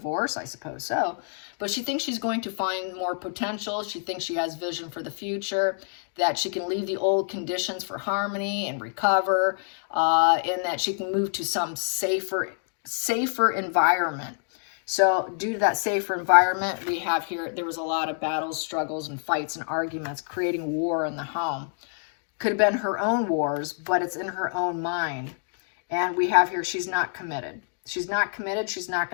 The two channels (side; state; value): right; silent; 60 dB below the other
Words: I suppose so. But she thinks she's going to find more potential. She thinks she has vision for the future, that she can leave the old conditions for harmony and recover, and that she can move to some safer environment. So due to that safer environment, we have here, there was a lot of battles, struggles, and fights and arguments, creating war in the home. Could have been her own wars, but it's in her own mind. And we have here, she's not committed. She's not committed. She's not